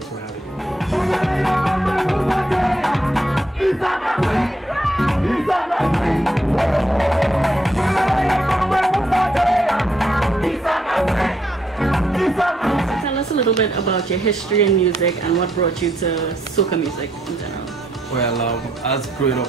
for having me. Tell us a little bit about your history in music and what brought you to soca music in general. Well, as growing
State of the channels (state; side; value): normal; both; correlation 0.75